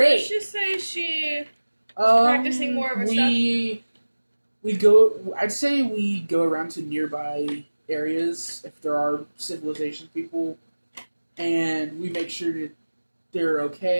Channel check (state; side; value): inverted; both; correlation -1.00